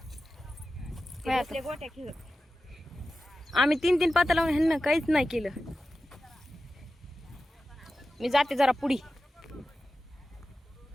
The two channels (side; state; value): both; normal; correlation 0.93